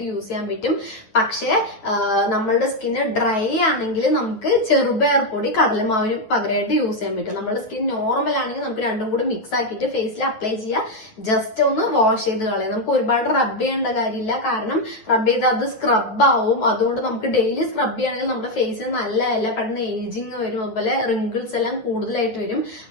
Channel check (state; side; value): late; right; 9.2 ms